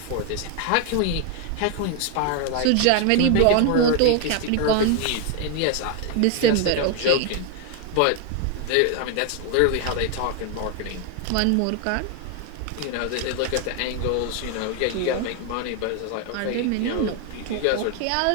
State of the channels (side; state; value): both; different; correlation 0.01